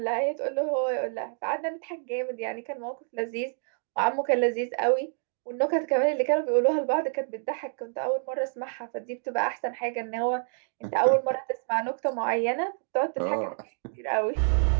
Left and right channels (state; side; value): silent; left; digital silence